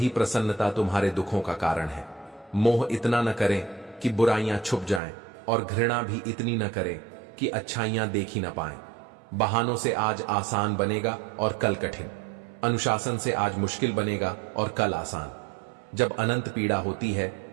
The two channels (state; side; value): drops out; left; at 5.0 s